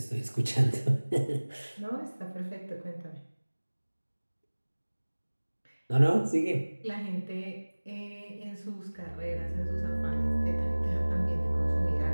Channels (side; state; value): both; inverted; correlation -1.00